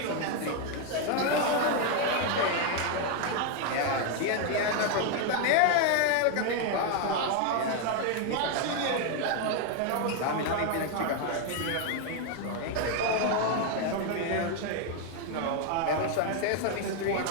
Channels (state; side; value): different; both; correlation 0.01